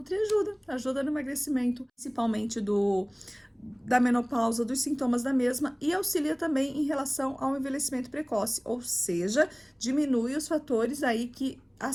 ajuda no emagrecimento, principalmente da menopausa, dos sintomas da mesma e auxilia também em relação ao envelhecimento precoce, ou seja, diminui os fatores aí que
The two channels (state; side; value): identical; both; correlation 1.00